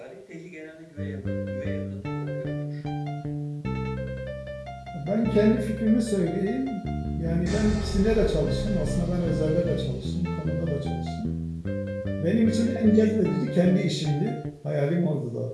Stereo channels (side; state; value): both; identical; correlation 1.00